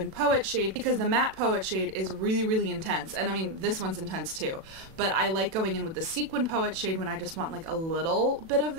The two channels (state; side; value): late; left; 37 ms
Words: poet shade, because the matte poet shade is really, really intense. And I mean, this one's intense too. But I like going in with the sequin poet shade when I just want like a little bit of